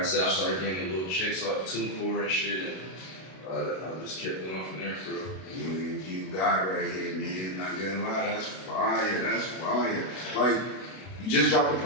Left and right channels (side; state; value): right; late; 32 ms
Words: said, I started getting little checks off TuneCore and shit. And I just kept going from there for real. You got right here, man. Not gonna lie, that's fire. That's fire. You just dropped the